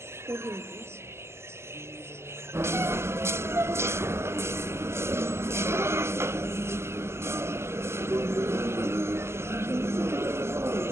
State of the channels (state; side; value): late; left; 0.12 ms